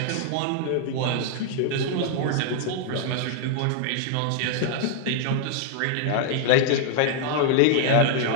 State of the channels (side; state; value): both; different; correlation 0.00